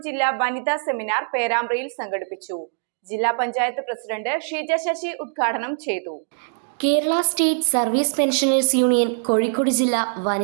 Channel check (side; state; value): left; silent; digital silence